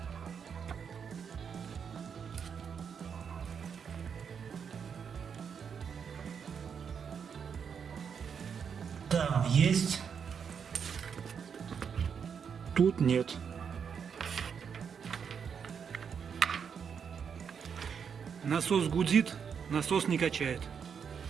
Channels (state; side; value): quieter; left; 6.9 dB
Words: Там есть. Тут нет. Насос гудит, насос не качает.